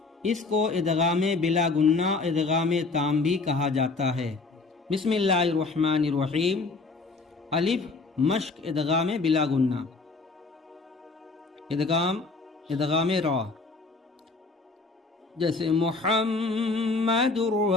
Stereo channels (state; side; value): quieter; right; 3.7 dB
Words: اس کو ادغام بلا گنہ ادغام تام بھی کہا جاتا ہے۔ بسم اللہ الرحمن الرحیم۔ الف مشق ادغام بلا گنہ، ادغام را، جیسے محمد